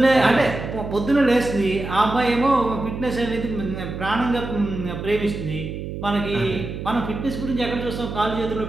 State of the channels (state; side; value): noise; right; hum, 7 dB below the sound